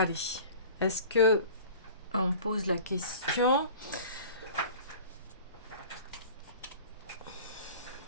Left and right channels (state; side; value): inverted; both; correlation -0.41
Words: est-ce que on pose la question,